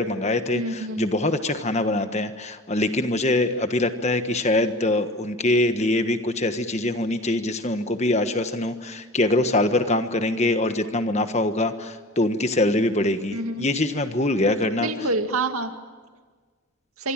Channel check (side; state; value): both; normal; correlation 0.38